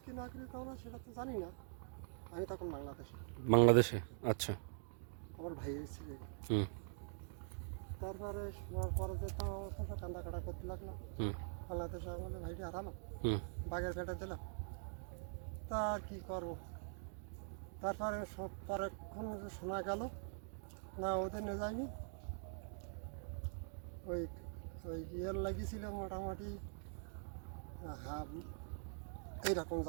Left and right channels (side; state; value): left; silent; digital silence